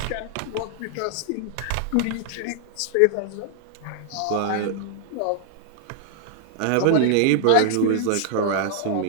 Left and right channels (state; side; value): different; both; correlation 0.00